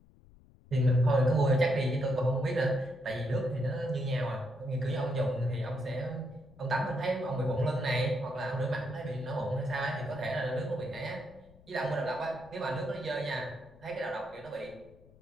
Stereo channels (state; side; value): noise; left; rumble, 25 dB below the sound